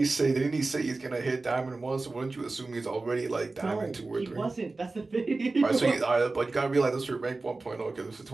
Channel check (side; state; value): left; quieter; 3.5 dB